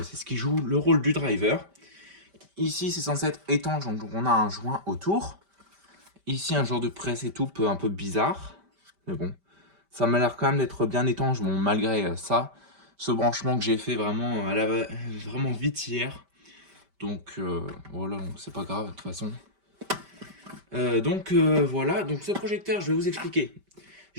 c'est ce qui joue le rôle du driver. Ici c'est censé être étanche, donc on a un joint autour. Ici un genre de presse et tout, un peu bizarre, mais bon. Ça m'a l'air quand même d'être bien étanche, bon malgré ça. Ce branchement que j'ai fait vraiment, vraiment vite hier. Donc voilà, donc c'est pas grave de toute façon. Voilà, donc ce projecteur, je vais vous expliquer.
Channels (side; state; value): left; late; 5.1 ms